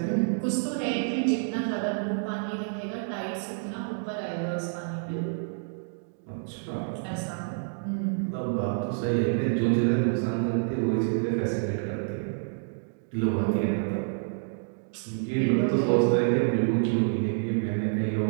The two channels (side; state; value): left; silent; digital silence